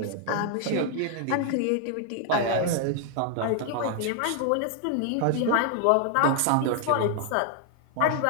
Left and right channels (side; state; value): both; different; correlation 0.00